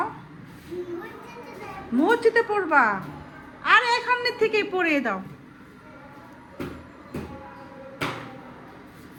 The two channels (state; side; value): identical; both; correlation 1.00